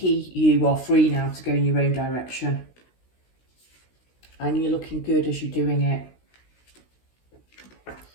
are free now to go in your own direction. And you're looking good as you're doing it.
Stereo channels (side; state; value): right; late; 16 ms